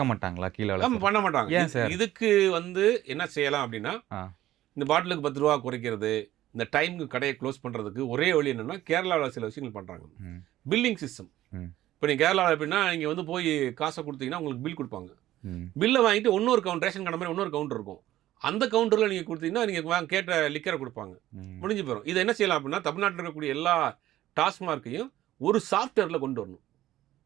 மாட்டாங்களா கீழ ஆமா அளவுக்கு? பண்ண மாட்டாங்க. ஏன் சார்? இதுக்கு வந்து என்ன செய்யலாம் அப்படின்னா, ஆ. இந்த பாட்டிலுக்கு ரூ. 10 குறைக்கிறது, இந்த டைம்க்கு கடைய க்ளோஸ் பண்றதுக்கு ஒரே வழி என்னன்னா, கேரளாவுல சில விஷயங்கள் பண்றாங்க. ம். Billing system. ம். இப்ப நீங்க கேரளால எப்படின்னா, நீங்க வந்து போய் காச குடுத்தீங்கன்னா, உங்களுக்கு பில் குடுப்பாங்க. ம். பில்ல வாங்கிட்டு இன்னொரு ரேஷன் கடை மாரி இன்னொரு கவுண்டர் இருக்கும். அந்த கவுண்டர்ல நீங்க குடுத்தீங்கன்னா, நீங்க கேட்ட லிக்கர குடுப்பாங்க. ம். முடிஞ்சு போயிரும். இத என்ன செய்யலாம் அப்படின்னா, தமிழ்நாட்டுல இருக்கக்கூடிய எல்லா டாஸ்மார்க்கையும் ஒரு சாஃப்ட்வேர்ல கொண்டு வரணும்.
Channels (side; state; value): left; quieter; 14.2 dB